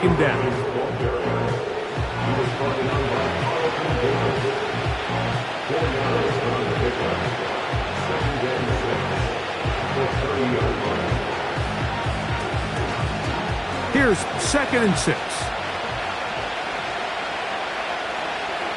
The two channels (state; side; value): identical; both; correlation 1.00